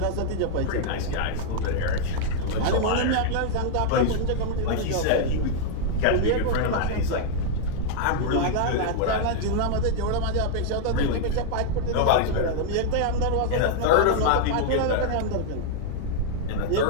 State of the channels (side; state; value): both; different; correlation -0.01